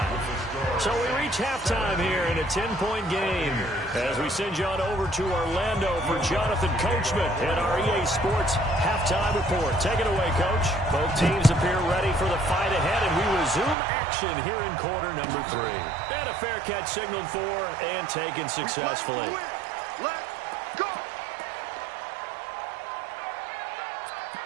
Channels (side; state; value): left; drops out; at 13.8 s